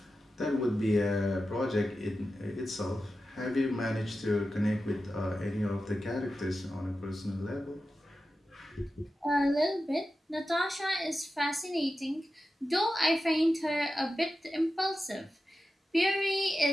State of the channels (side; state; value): both; normal; correlation 0.92